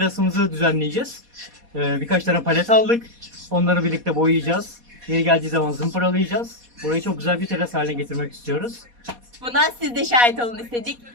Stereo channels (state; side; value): late; left; 4.2 ms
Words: düzenleyeceğiz. Birkaç tane palet aldık. Onları birlikte boyayacağız. Yeri geldiği zaman zımparalayacağız. Burayı çok güzel bir teras haline getirmek istiyoruz. Buna siz de şahit olun istedik.